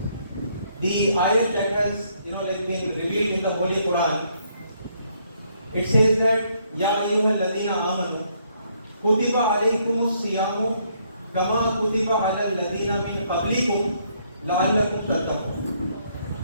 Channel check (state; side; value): inverted; both; correlation -0.70